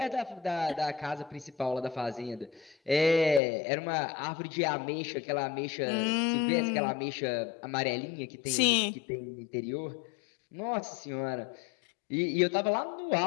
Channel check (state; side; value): drops out; right; at 3.4 s